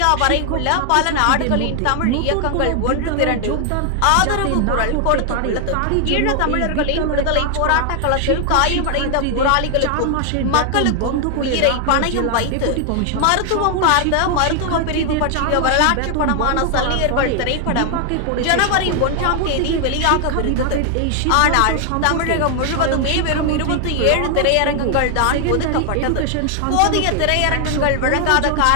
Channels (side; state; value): both; different; correlation 0.00